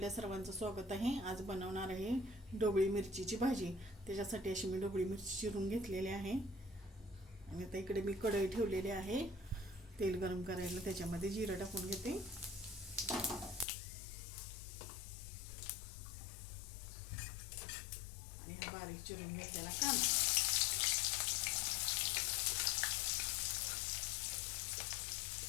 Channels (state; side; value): drops out; right; at 13.7 s